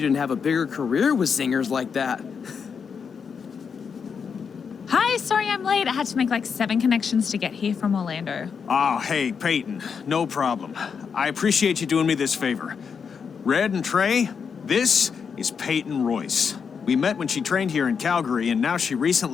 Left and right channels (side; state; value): right; quieter; 6.3 dB